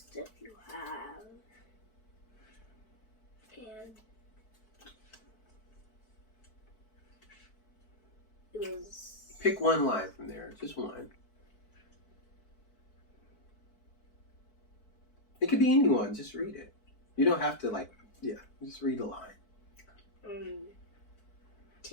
you have, and it was. Pick one line from there, just one. It could be anyone, just read it. You don't have to, just read a line.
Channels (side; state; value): right; late; 4.6 ms